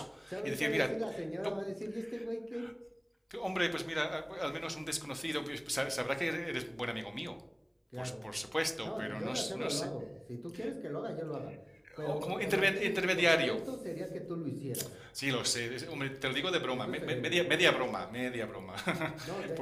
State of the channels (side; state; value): both; identical; correlation 1.00